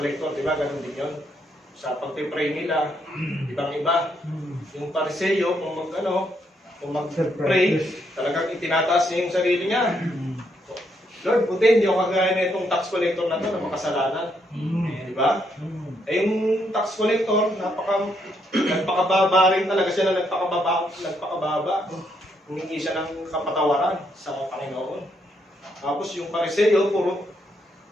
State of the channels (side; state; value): both; normal; correlation 0.75